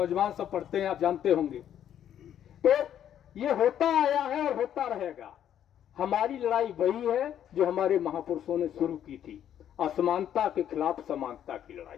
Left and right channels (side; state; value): right; quieter; 10.2 dB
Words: सब पढ़ते हैं, आप जानते होंगे। तो ये होता आया है और होता रहेगा। हमारी लड़ाई वही है जो हमारे महापुरुषों ने शुरू की थी, असमानता के खिलाफ समानता की